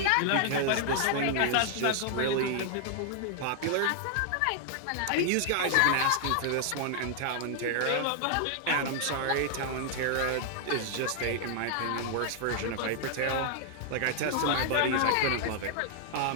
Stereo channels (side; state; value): both; different; correlation 0.00